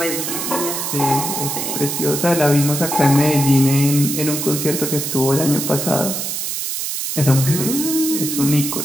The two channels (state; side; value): noise; right; hiss, 3 dB below the sound